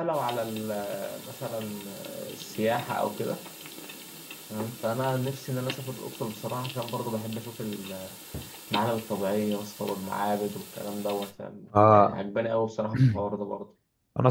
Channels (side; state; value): both; identical; correlation 1.00